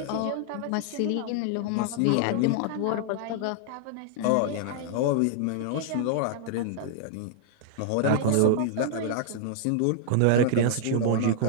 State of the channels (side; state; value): both; different; correlation -0.01